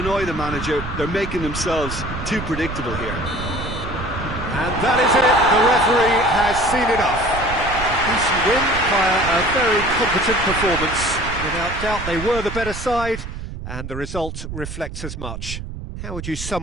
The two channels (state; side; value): noise; right; rumble, 8 dB below the sound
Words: the manager. They're making themselves too predictable here. And that is it. The referee has seen enough. A decent win via a very competent performance. Without doubt, they were the better side, and the result reflects as much. How would you